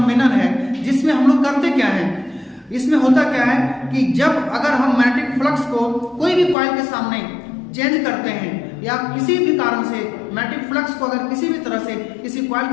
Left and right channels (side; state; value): right; drops out; at 6.6 s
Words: है जिसमें हम लोग करते क्या है, इसमें होता क्या है कि जब अगर हम मैग्नेटिक फ्लक्स को कोई भी कॉइल के सामने चेंज करते हैं या किसी भी कारण से मैग्नेटिक फ्लक्स को अगर किसी भी तरह से किसी कॉइल